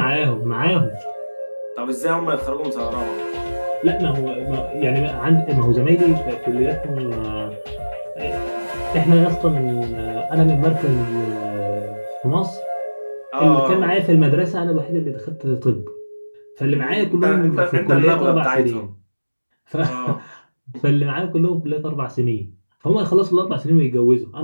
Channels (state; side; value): inverted; both; correlation -1.00